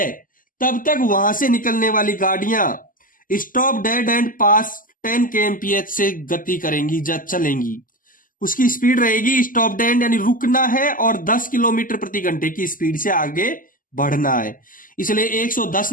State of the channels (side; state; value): right; late; 0.40 ms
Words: तब तक वहां से निकलने वाली गाड़ियां stop dead and pass 10 kmph से गति करेंगी, जब चलेंगी। उसकी स्पीड रहेगी स्टॉप डेड यानी रुकना है और 10 किलोमीटर प्रति घंटे की स्पीड से आगे बढ़ना है। इसलिए 110